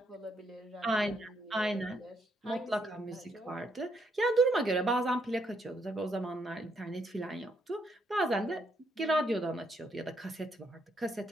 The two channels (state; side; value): normal; both; correlation 0.75